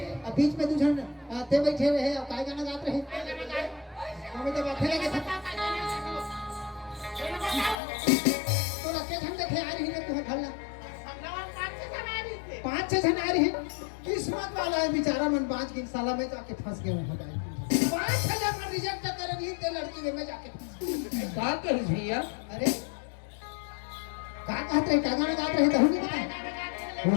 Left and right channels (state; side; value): drops out; right; at 7.8 s